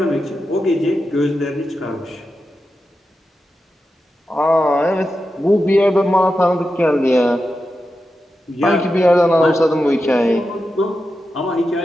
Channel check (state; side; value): normal; both; correlation 0.90